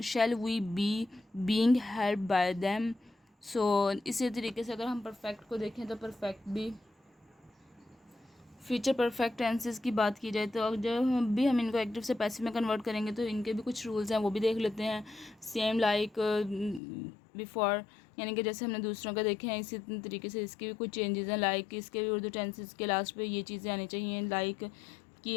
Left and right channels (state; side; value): drops out; right; at 16.8 s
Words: shall we be being helped by them. So इसी तरीके से अगर हम परफेक्ट को देखें तो परफेक्ट भी, फ्यूचर परफेक्ट टेंसेस की बात की जाए तो अब जब भी हम इनको एक्टिव से पैसिव में कन्वर्ट करेंगे तो इनके भी कुछ रूल्स हैं, वो भी देख लेते हैं। सेम लाइक बिफोर, यानी कि जैसे हमने दूसरों का देखे हैं इसी तरीके से इसके भी कुछ चेंजेस हैं, लाइक इसके भी उर्दू टेंसेस के लास्ट पे ये चीज़ें आनी चाहिए, लाइक